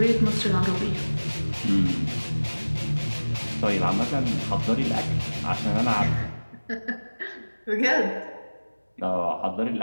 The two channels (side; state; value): both; inverted; correlation -1.00